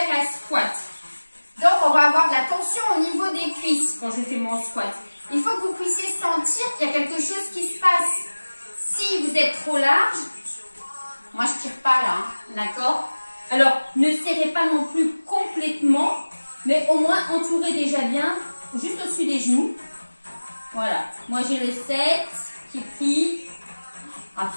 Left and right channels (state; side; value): inverted; both; correlation -1.00